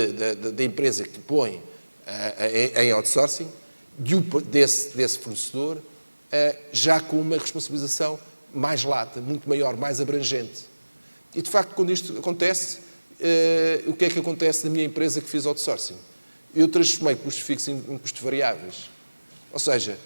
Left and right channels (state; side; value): inverted; both; correlation -1.00